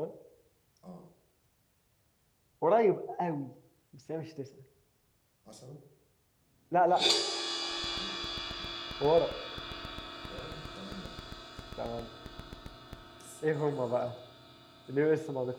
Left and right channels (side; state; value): both; identical; correlation 1.00